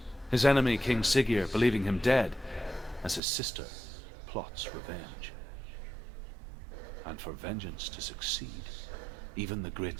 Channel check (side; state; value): left; drops out; at 3.2 s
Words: His enemy, King Siggeir, believing him dead, as his sister plots revenge. And for vengeance to succeed, even the